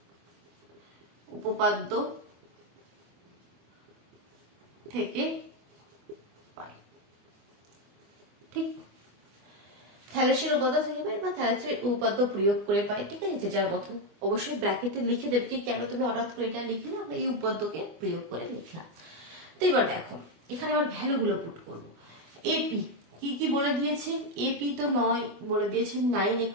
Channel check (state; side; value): late; left; 24 ms